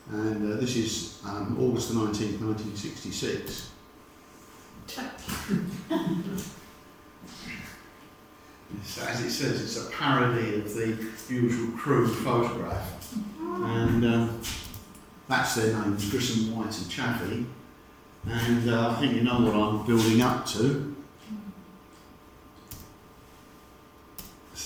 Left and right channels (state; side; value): identical; both; correlation 1.00